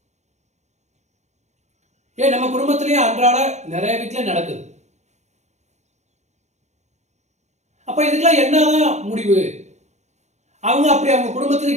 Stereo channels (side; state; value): left; late; 0.33 ms